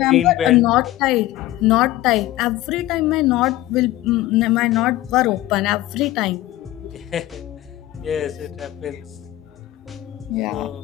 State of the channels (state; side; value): quieter; right; 16.0 dB